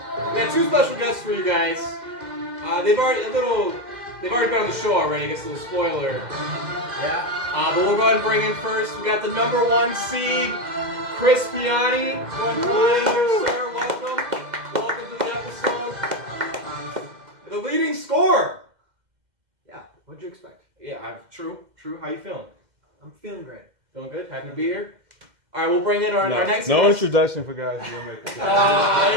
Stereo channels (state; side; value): late; left; 2.1 ms